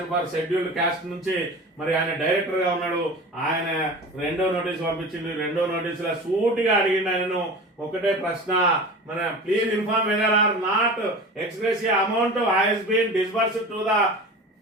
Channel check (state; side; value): normal; both; correlation 0.34